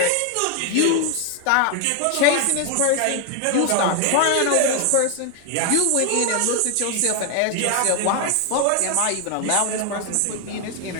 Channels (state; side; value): different; both; correlation 0.00